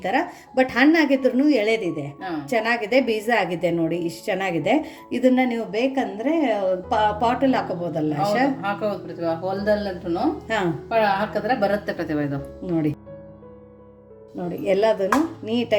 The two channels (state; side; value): identical; both; correlation 1.00